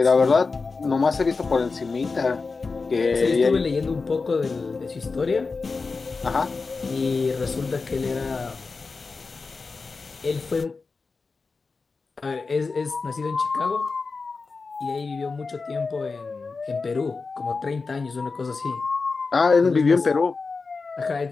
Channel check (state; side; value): quieter; right; 4.3 dB